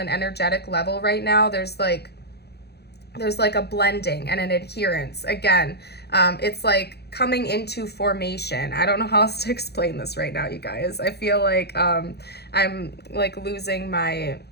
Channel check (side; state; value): right; late; 0.48 ms